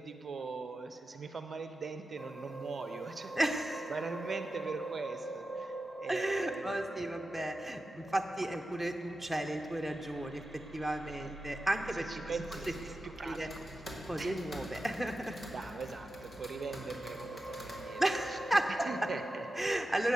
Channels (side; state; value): both; normal; correlation 0.92